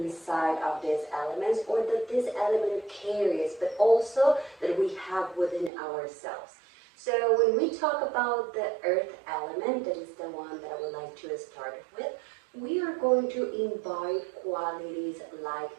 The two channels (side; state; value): left; drops out; at 5.7 s